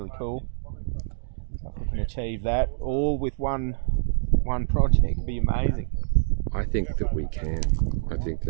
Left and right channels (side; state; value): left; silent; digital silence